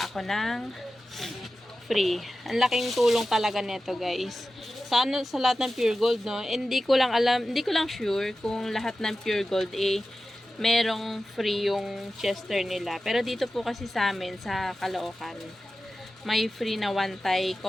ako ng free. Ang laking tulong talaga nito guys. Sa lahat ng Pure Gold, no? Hindi ko lang sure kung lahat ng Pure Gold merong free yung Chester nila. Pero dito po kasi sa amin, sa Caloocan, may free na one tie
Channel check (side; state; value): both; normal; correlation 0.94